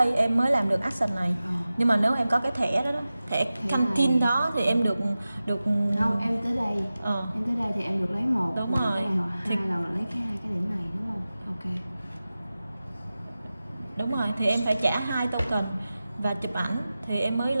em mới làm được action này. Nhưng mà nếu em có cái thẻ đó, thẻ canteen đó thì em được Không, em tới đây. Em tới đây thì em được lấy 1. Đúng rồi. Cái này hoặc 2 là lấy cái 2 cái điểm này đúng không? Ok. Đúng rồi, thì em phải trả 2 token và chụp ảnh thì em mới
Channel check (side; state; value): both; inverted; correlation -0.95